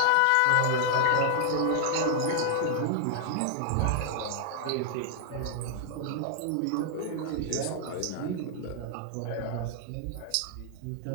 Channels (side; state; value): both; different; correlation 0.00